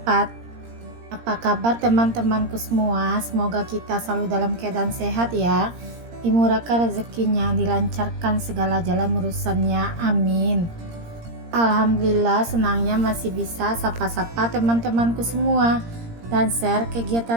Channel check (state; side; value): late; left; 17 ms